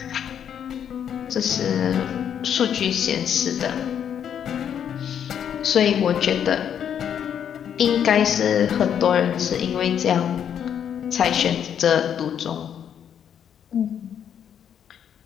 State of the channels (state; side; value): quieter; right; 8.8 dB